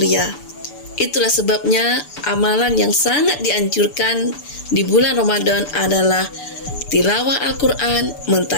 Itulah sebabnya amalan yang sangat dianjurkan di bulan Ramadan adalah tilawah Al-Quran,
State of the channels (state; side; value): late; right; 6.9 ms